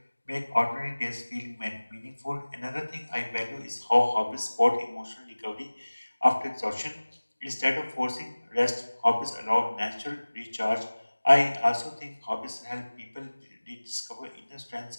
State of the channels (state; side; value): inverted; both; correlation -1.00